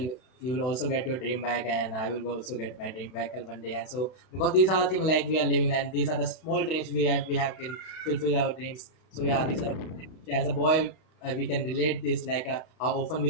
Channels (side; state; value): right; late; 32 ms